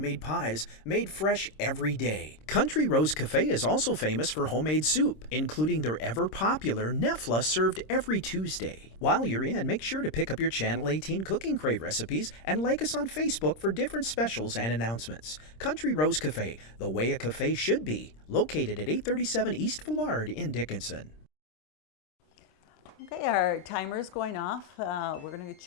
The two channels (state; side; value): late; right; 26 ms